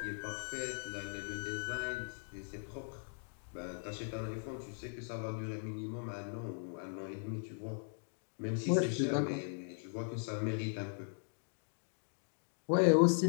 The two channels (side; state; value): right; silent; digital silence